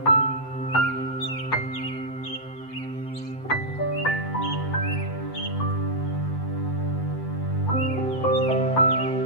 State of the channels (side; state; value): right; late; 7.9 ms